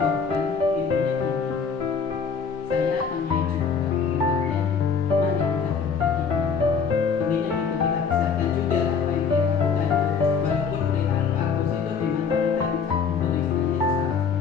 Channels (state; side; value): quieter; right; 5.9 dB